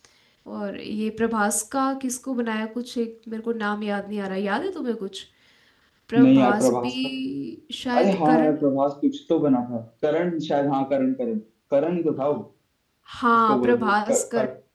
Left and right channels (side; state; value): both; identical; correlation 1.00